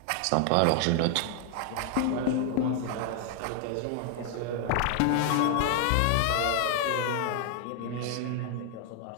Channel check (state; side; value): different; both; correlation 0.00